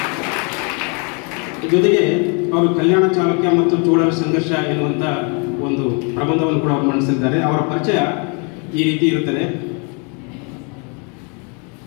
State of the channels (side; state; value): right; quieter; 35.5 dB